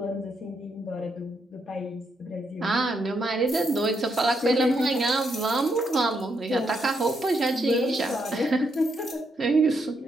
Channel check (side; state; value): both; normal; correlation 0.78